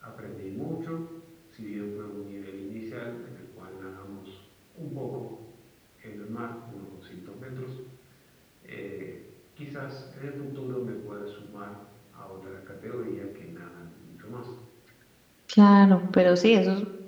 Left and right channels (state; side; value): identical; both; correlation 1.00